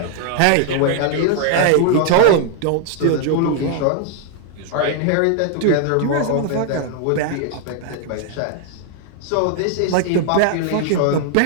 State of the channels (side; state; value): both; different; correlation 0.00